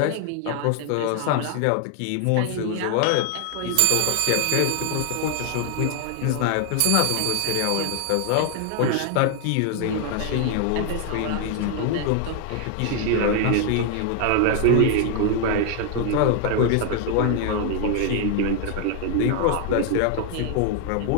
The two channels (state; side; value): different; both; correlation 0.00